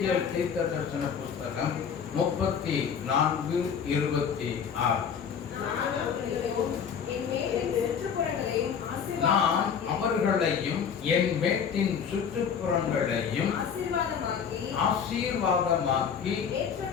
தீர்க்கதரிசன புஸ்தகம் 34:26. நான் அவர்களையும் என் மேட்டின் சுற்றுப்புறங்களையும் ஆசீர்வாதமாக்கி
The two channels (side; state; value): right; quieter; 7.2 dB